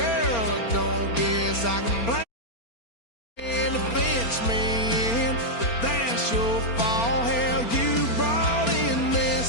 I don't guess I can blame the fence man, but that's your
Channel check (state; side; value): late; right; 4.3 ms